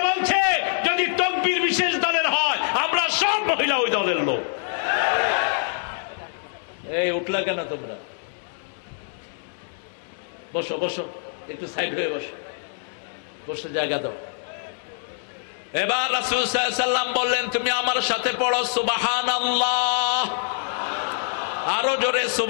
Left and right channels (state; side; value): silent; right; digital silence